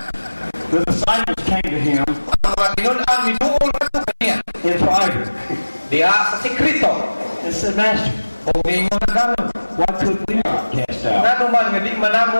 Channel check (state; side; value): inverted; both; correlation -1.00